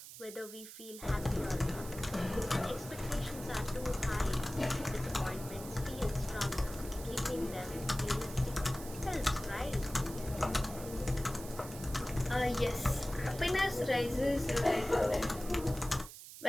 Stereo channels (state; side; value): noise; right; hiss, 13 dB below the sound